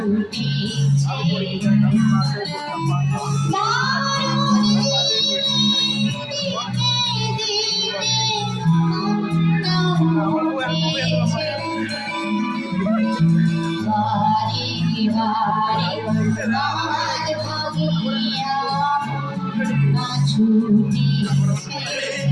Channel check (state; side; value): identical; both; correlation 1.00